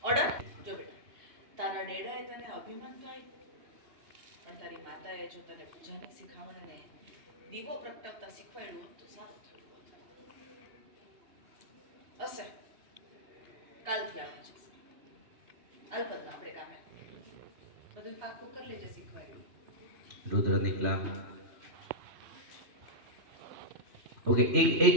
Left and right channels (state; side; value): late; left; 2.8 ms